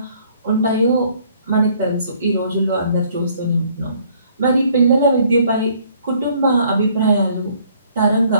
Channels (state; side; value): inverted; both; correlation -0.62